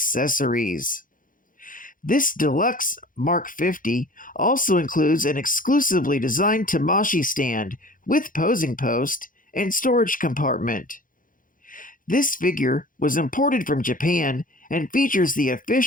This deluxe Mark 50 also includes an exclusively designed Tamashii stand with posing post and storage compartment. This figure was imported from Japan and features the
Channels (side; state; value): right; late; 0.39 ms